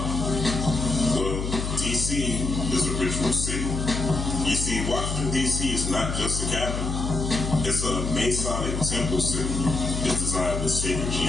Well, D.C. is a ritual city. You see, Washington, D.C. is not just a capital. It's a Masonic temple city. It's designed with sacred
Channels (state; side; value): noise; left; hum, 3 dB below the sound